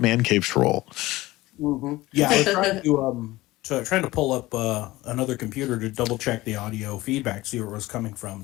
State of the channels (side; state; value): right; quieter; 18.5 dB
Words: cave troll. Mm-hmm. Yeah, I was trying to pull up another computer to double check the audio feedback, see where it was coming from.